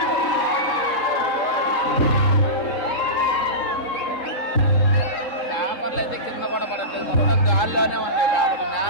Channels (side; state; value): right; late; 3.7 ms